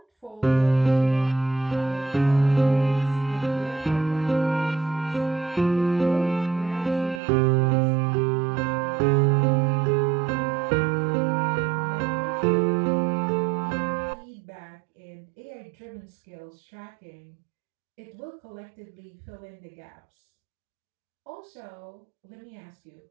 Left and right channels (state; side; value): drops out; left; at 7.2 s